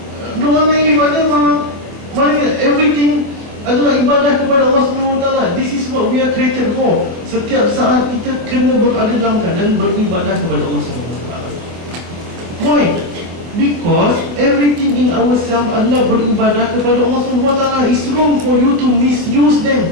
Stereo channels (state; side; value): late; left; 25 ms